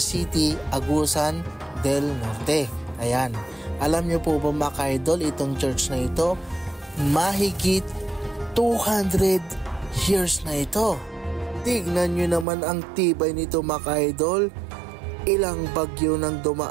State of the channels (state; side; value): drops out; left; at 12.5 s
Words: Agusan del Norte. Ayan. Alam nyo po ba mga ka-idol, itong church na ito, mahigit 200 years na ito. Tignan nyo naman ang tibay nito mga ka-idol. Ilang bagyo nang